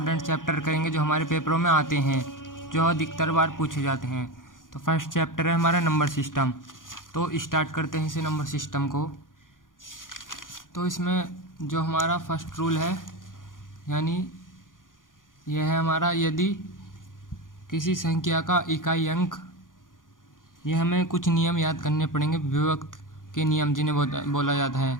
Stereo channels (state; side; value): late; right; 0.89 ms